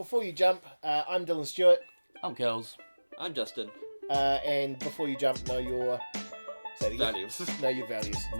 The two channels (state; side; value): inverted; both; correlation -1.00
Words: you jump, I'm Dylan Stewart. I'm Kelz. I'm Justin. And before you jump, know your... Say it again. Values. Know your values.